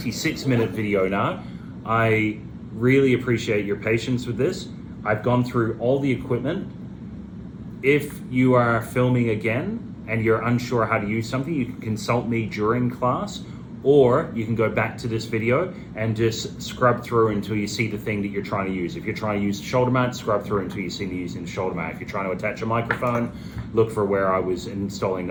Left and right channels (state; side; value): identical; both; correlation 1.00